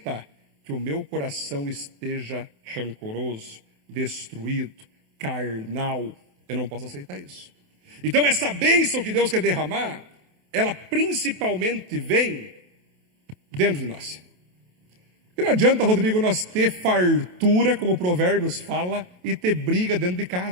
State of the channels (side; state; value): left; late; 28 ms